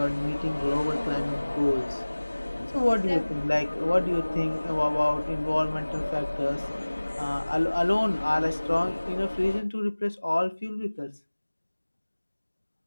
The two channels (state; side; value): inverted; both; correlation -1.00